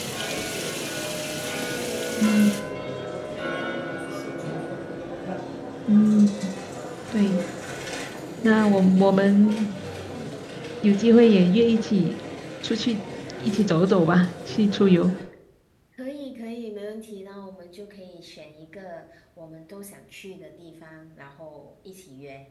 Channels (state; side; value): identical; both; correlation 1.00